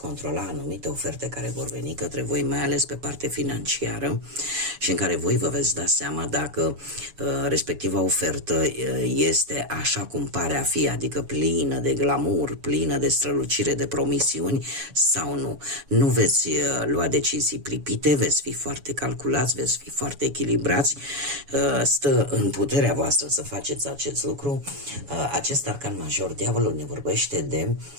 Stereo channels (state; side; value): late; left; 7.1 ms